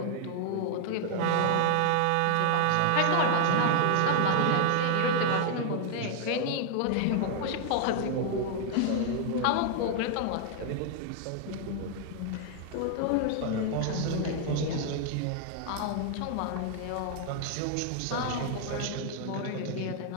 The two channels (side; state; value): both; different; correlation 0.00